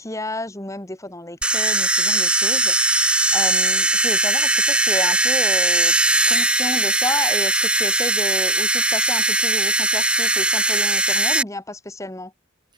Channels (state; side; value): normal; both; correlation -0.06